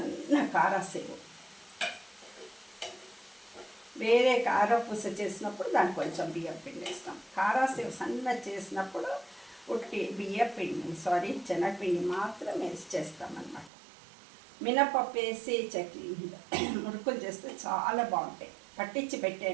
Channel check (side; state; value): left; drops out; at 13.7 s